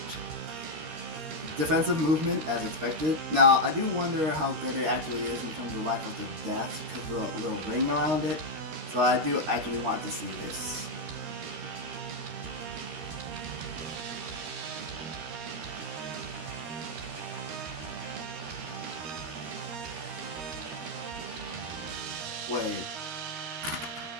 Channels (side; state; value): left; late; 13 ms